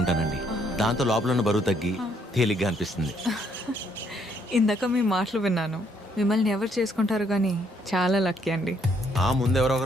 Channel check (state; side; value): normal; both; correlation 0.69